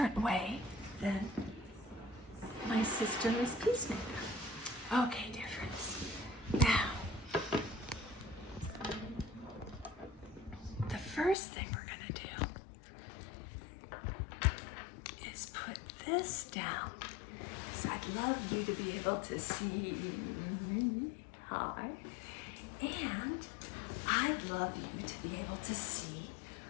way than my sister is peacemaker. Okay, difference. Now, first thing we're gonna do is put this down. So I'd love you to be able to see me. Hi. And I'd love you to be able to see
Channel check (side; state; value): right; drops out; at 11.4 s